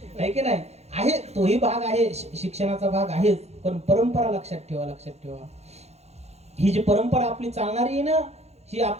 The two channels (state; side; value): late; left; 0.31 ms